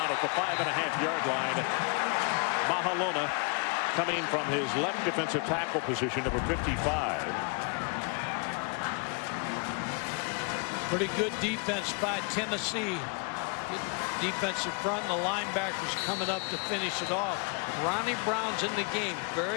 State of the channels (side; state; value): right; quieter; 35.9 dB